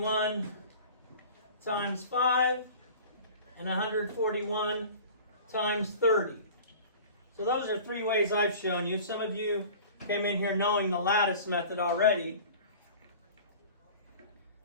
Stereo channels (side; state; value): both; inverted; correlation -0.41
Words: times 5 and 141 times 30. So those are 3 ways I've shown you. Some of you came in here knowing the lattice method already.